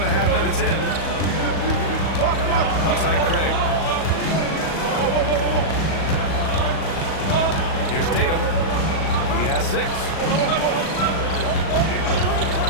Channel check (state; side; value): late; right; 37 ms